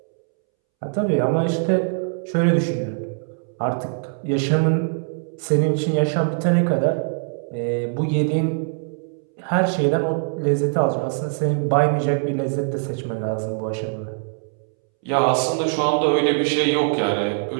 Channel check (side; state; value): left; silent; 64 dB below the other